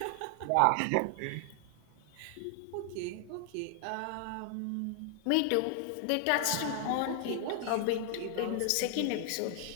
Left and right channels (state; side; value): different; both; correlation 0.00